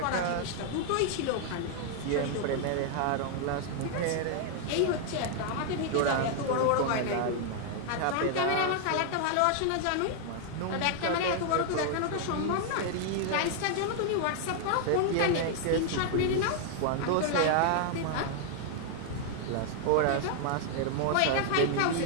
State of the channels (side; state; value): both; different; correlation 0.00